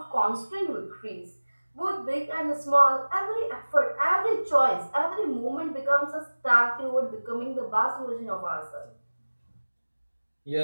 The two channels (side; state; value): both; inverted; correlation -1.00